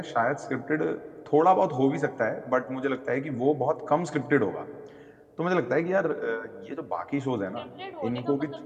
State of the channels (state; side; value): identical; both; correlation 1.00